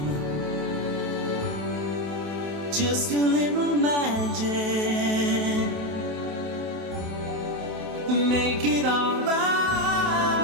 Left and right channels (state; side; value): late; left; 28 ms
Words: Just a little magic. Make it alright.